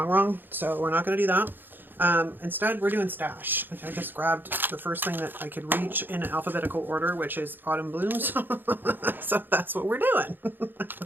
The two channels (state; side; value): late; left; 0.094 ms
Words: so we're not going to do that. Instead, we're doing stash. I just grabbed the first thing that I could reach in alphabetical order, which is autumn blooms. So that's what we're doing.